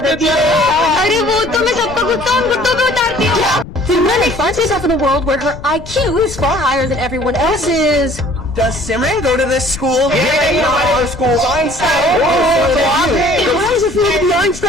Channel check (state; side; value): noise; left; rumble, 14 dB below the sound